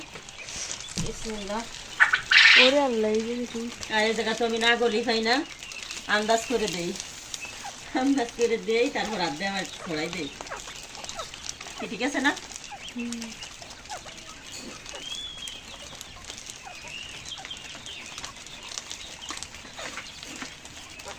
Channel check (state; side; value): identical; both; correlation 1.00